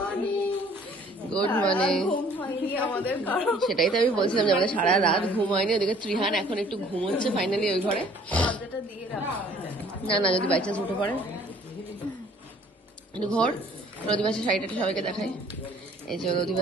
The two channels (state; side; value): normal; both; correlation 0.56